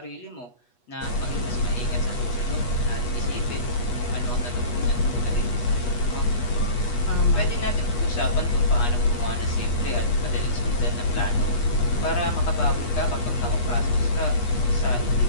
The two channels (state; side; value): late; right; 8.3 ms